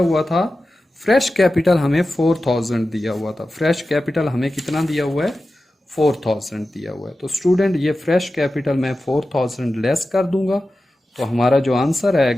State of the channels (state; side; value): normal; both; correlation 0.94